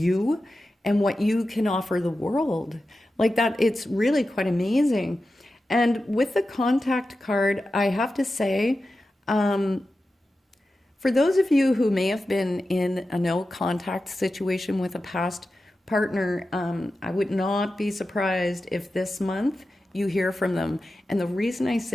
and what you can offer the world. Like that, it's really quite amazing. And with the contact card, I have to say, for those of you who may have been in a no contact situation with a past partner, I would not be surprised if this month you hear from them. And the reason I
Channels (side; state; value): both; normal; correlation 0.92